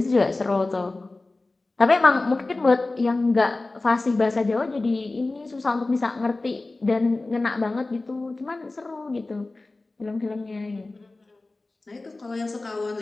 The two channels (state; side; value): quieter; right; 3.2 dB